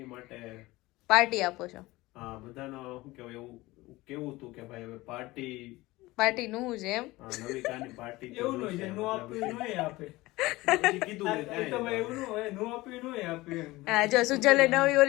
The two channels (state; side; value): quieter; right; 19.8 dB